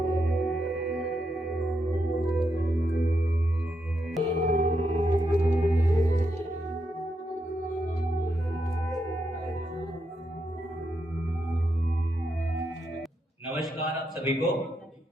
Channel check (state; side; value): normal; both; correlation 0.82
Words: नमस्कार आप सभी को।